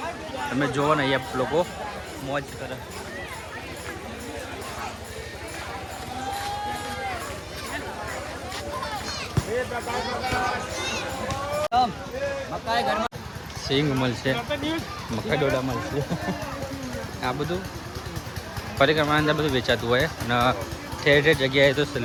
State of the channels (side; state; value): both; identical; correlation 1.00